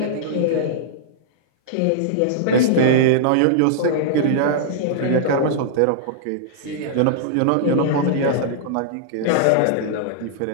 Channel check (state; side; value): different; both; correlation -0.02